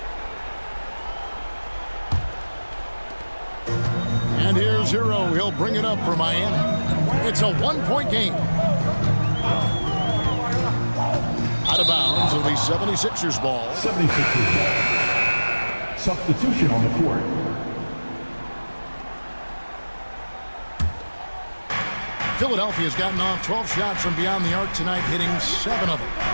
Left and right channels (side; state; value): both; inverted; correlation -1.00